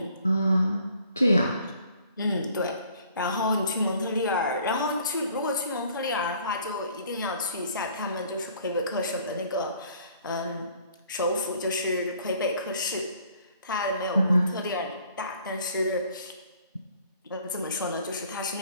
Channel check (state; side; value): inverted; both; correlation -0.57